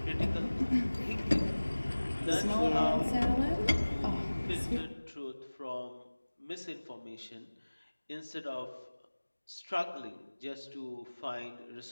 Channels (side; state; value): both; inverted; correlation -1.00